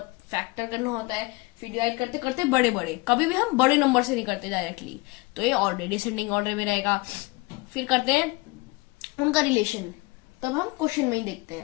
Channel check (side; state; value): right; quieter; 24.7 dB